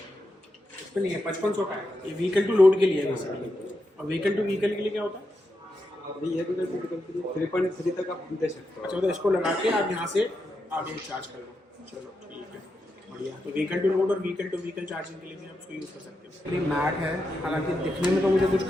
इस पर नहीं है, 5500 का है। ये व्हीकल टू लोड के लिए है बेसिकली। और व्हीकल टू व्हीकल के लिए क्या होता है? अभी ये 3.3 तक आप दे सकते हो। अच्छा, तो इसको लगा के आप यहाँ से आगे चार्ज कर लो। चलो ठीक है, बढ़िया। तो व्हीकल टू लोड और व्हीकल टू व्हीकल चार्जिंग के लिए भी आप उसको यूज़ कर सकते हो। ये मैट है, हालांकि दिखने में तो मुझे कुछ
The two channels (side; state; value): both; normal; correlation 0.86